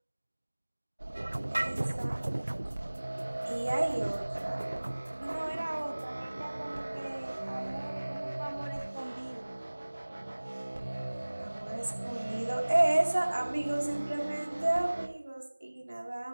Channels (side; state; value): both; inverted; correlation -1.00